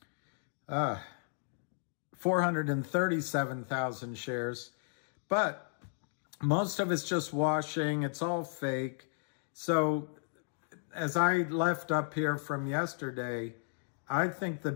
437,000 shares. But most of it's just washing. It's all fake. So as I left up here from yesterday, I think the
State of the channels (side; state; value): right; silent; digital silence